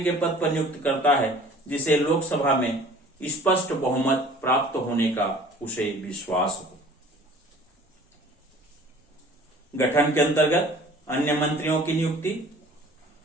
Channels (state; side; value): normal; both; correlation 0.48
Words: के पद पर नियुक्त करता है जिसे लोकसभा में स्पष्ट बहुमत प्राप्त होने का उसे विश्वास हो। गठन के अंतर्गत अन्य मंत्रियों की नियुक्ति।